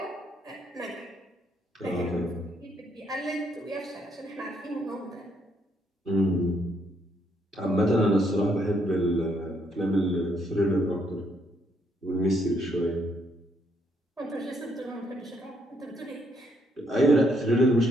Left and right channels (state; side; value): normal; both; correlation 0.72